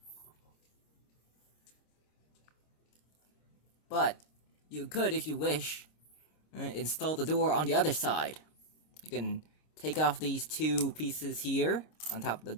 But you could, if you wish, install the door on the other side. You can take off these two pieces here on top of the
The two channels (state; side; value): late; right; 26 ms